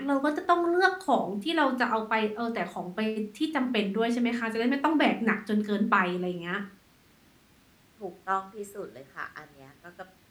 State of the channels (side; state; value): both; identical; correlation 1.00